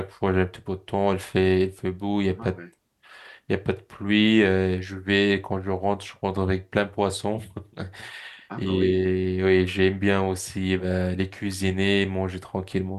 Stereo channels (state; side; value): identical; both; correlation 1.00